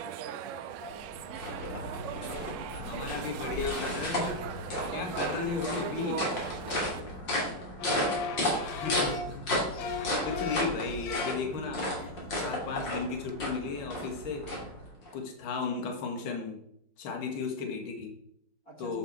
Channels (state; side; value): late; right; 5.6 ms